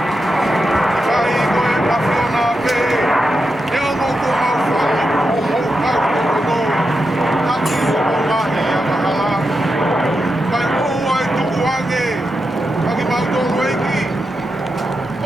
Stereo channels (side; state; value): both; normal; correlation 0.87